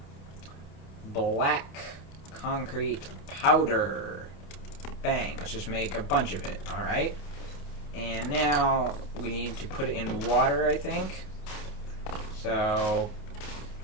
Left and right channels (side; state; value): right; late; 28 ms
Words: Black concrete powder. Bang. Let's just make a bunch of it. Alright. And now we need to put it in water, I think. So